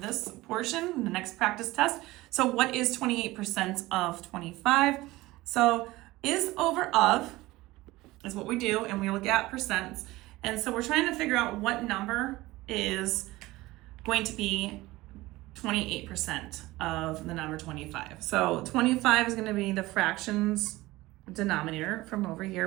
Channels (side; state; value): left; quieter; 19.1 dB